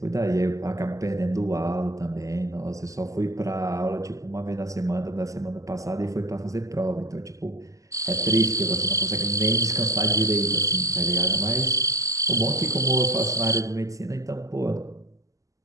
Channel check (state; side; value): late; left; 0.16 ms